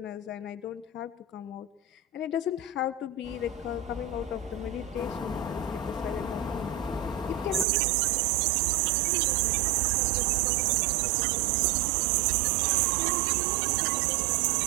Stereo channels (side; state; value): left; drops out; at 7.7 s